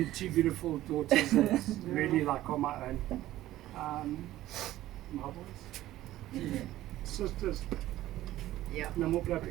2 beautiful daughters that's really like on my own. My boys. Sisters. Yeah. No more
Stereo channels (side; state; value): left; quieter; 14.9 dB